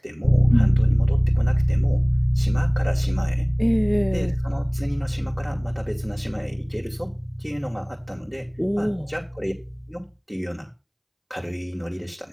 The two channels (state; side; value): identical; both; correlation 1.00